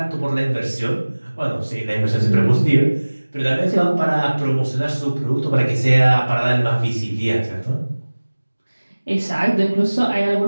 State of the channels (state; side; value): inverted; both; correlation -1.00